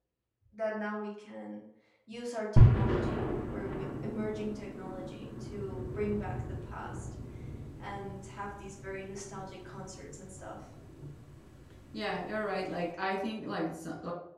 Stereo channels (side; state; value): both; identical; correlation 1.00